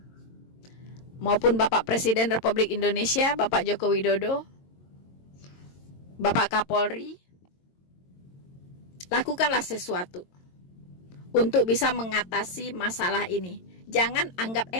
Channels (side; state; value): right; late; 22 ms